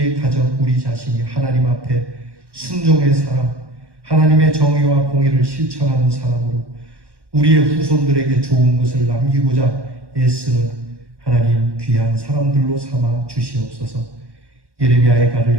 가정, 우리 자신이 하나님 앞에 순종의 사람, 하나님의 정의와 공의를 실천하는 사람으로 우리의 후손들에게 좋은 것을 남기고자 애쓰는 하나님 귀한 사람들로 삼아 주시옵소서. 예레미야의 가를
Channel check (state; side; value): late; left; 1.1 ms